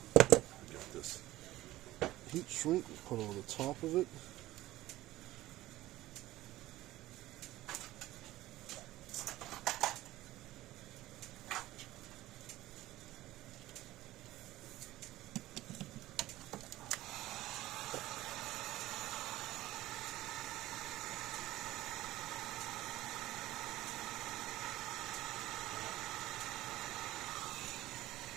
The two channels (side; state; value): left; quieter; 16.2 dB